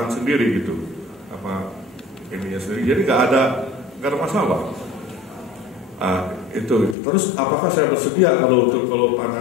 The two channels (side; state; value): right; drops out; at 7.0 s